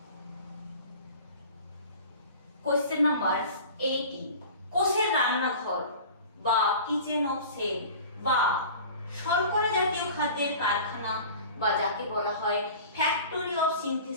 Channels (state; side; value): inverted; both; correlation -0.40